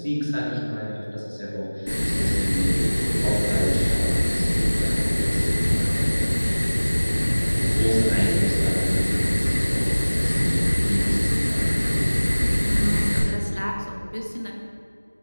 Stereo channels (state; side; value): inverted; both; correlation -1.00